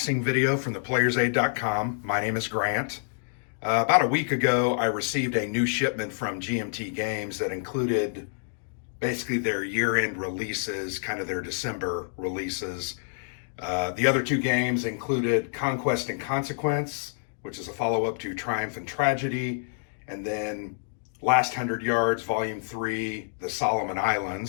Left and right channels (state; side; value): silent; right; digital silence